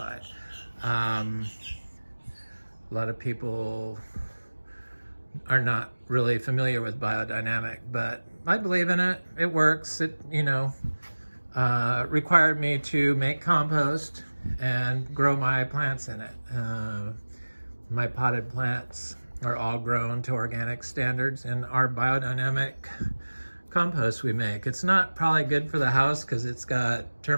A lot of people are not really familiar with biodynamic, but I believe in it. It works. required me to make compost and grow my plants in it. My potted plants are all grown to organic standards in our biodynamic compost we make. It's not probably good for the house because it's got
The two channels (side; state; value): both; inverted; correlation -1.00